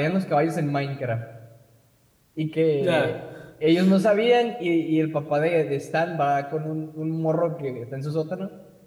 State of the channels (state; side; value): identical; both; correlation 1.00